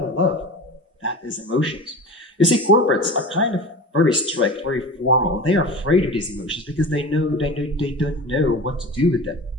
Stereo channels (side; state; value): both; normal; correlation 0.32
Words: love. That is emotions. You see, corporates are kind of very strict, very formal. They are afraid of these emotions because they don't know what to do with them.